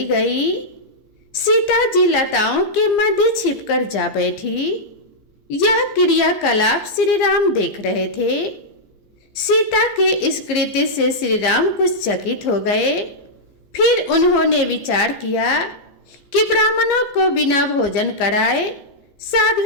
गई। सीता जी लताओं के मध्य छिपकर जा बैठी। यह क्रियाकलाप श्री राम देख रहे थे। सीता के इस कृत्य से श्री राम कुछ चकित हो गए। फिर उन्होंने विचार किया कि ब्राह्मणों को बिना भोजन कराए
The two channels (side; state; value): right; late; 14 ms